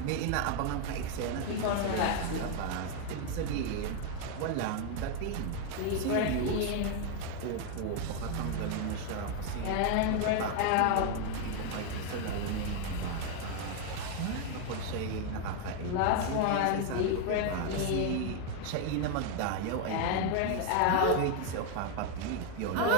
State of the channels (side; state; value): both; different; correlation 0.01